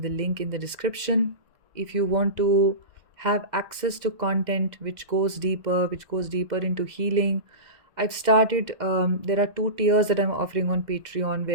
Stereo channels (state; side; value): late; left; 2.0 ms